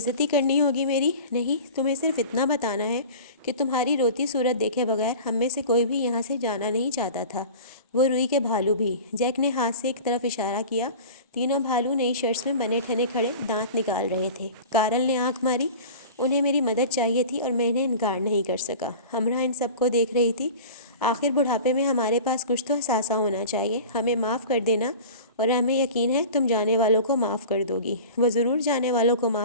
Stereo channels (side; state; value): both; inverted; correlation -0.37